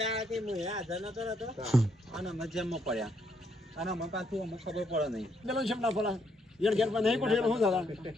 હું હાજર નતો રહેતો અને અમે જેમમાં પડ્યા અને અમે પાછું અમને ખબર પડે નહીં. પેલો છે ના ફલા યર ઘેર પર નહીં ગોઠવેલો હું દાદા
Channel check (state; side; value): normal; both; correlation 0.74